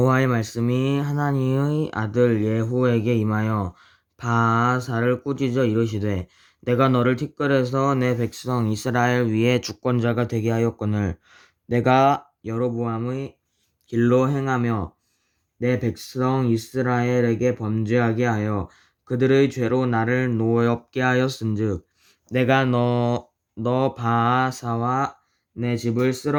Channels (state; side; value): identical; both; correlation 1.00